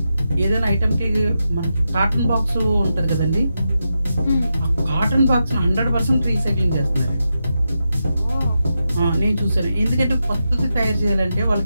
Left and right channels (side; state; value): both; inverted; correlation -0.87